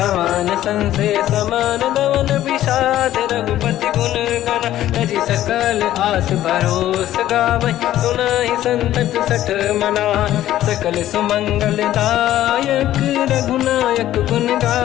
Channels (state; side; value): quieter; right; 13.3 dB